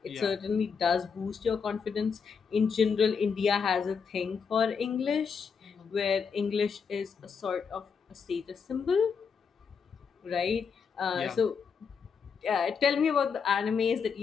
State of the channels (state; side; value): quieter; right; 6.1 dB